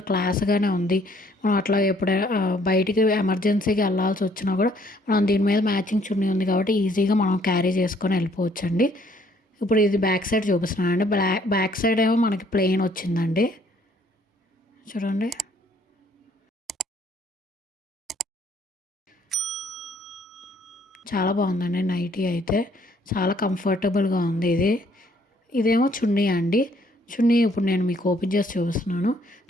క్లాస్గానే ఉంది. మనం అట్లా ఎప్పుడైనా బయటికి ఎమర్జెన్సీకి వెళ్ళాల్సి వచ్చినా కూడా మనం దీని మీద మ్యాచింగ్ చున్నీ ఉంది కాబట్టి ఈజీగా మనం క్యారీ చేసుకొని వెళ్ళిపోవచ్చండి. ఇప్పుడు ఇది బ్యాక్ సైడ్ చూపిస్తున్నానండి. బ్యాక్ సైడ్ ఏమో మనకి ప్లెయిన్ వచ్చిందండి. చూడండి చాలా బాగుందండి నైటీ అయితే, చాలా కంఫర్టబుల్గా ఉంది. ఇదేమో చున్నీ అండి. చున్నీ ఇప్పుడు నేను మీకు ఓపెన్ చేసి చూపిస్తున్నాను.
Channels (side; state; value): both; normal; correlation 0.64